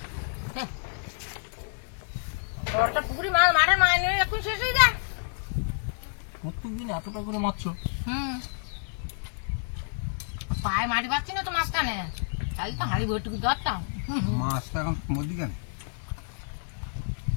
ওটা পুকুরি মাছ মাঠে মাছ নিয়ে এখন শেষ হয়ে যায়। প্রত্যেকদিন এতটা করে মারছো? হুম পায়ে মাটি পাচ্ছি না তো মাঝখানে, তাই তো হাঁড়ি বইটুকু ধরতাম। মাছটা এখন মধ্যে কেন?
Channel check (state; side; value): silent; right; digital silence